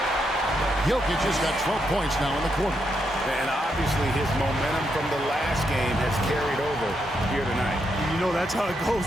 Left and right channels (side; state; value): both; normal; correlation 0.80